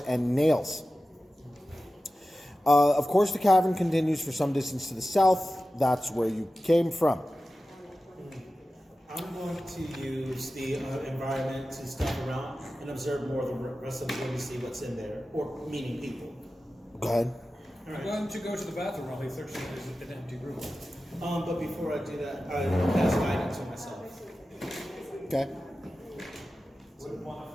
and nails. Of course, the cavern continues for some distance to the south. That's where you came from. I'm going to use the environment to step around and observe more of the rest of the room to see what's in there, or meaning people. Go ahead. I'm going to go to the bathroom while he's searching an empty room. But before I do that, I will pass guidance on myself. Okay. Wouldn't want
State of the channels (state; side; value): normal; both; correlation 0.94